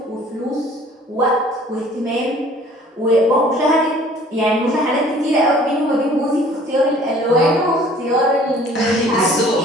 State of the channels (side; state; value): both; normal; correlation 0.52